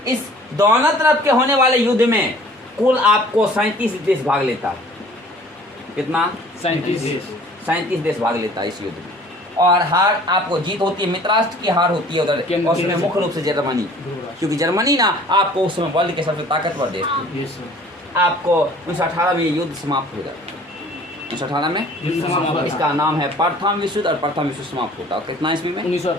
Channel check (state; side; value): normal; both; correlation 0.51